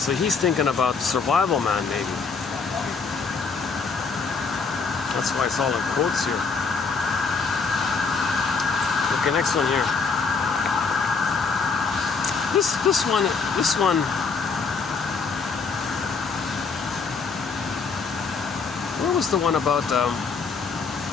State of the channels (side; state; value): right; quieter; 4.9 dB